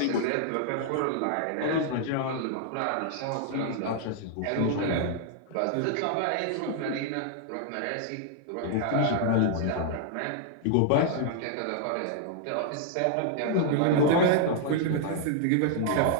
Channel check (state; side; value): different; both; correlation 0.00